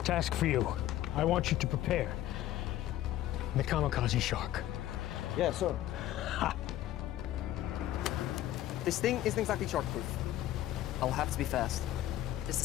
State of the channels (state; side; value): quieter; right; 13.5 dB